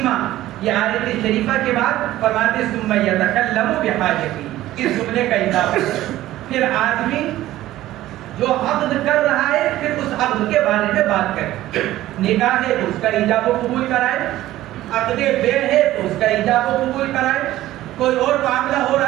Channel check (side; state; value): left; quieter; 15.0 dB